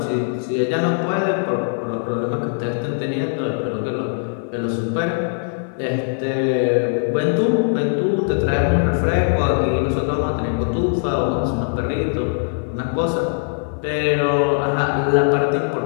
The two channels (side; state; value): right; silent; 65 dB below the other